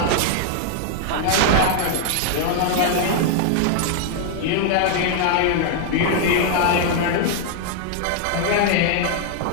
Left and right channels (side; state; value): both; different; correlation 0.00